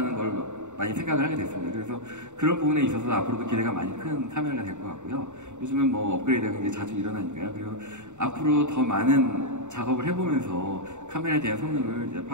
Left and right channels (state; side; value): late; left; 0.84 ms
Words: 걸 많이 생각을 하게 됐습니다. 그래서 그런 부분에 있어서 앞으로도 기대가 많이 큰 카메라가 될 것 같고요. 요즘은 뭐 업그레이드가 굉장히 자주 일어나니까요. 그리고 앞으로 더 많은 작업을 해보면서 카메라에 대한 성능을 이제